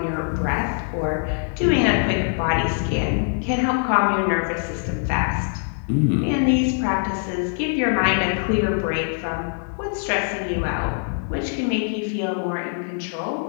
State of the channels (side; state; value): right; silent; 56 dB below the other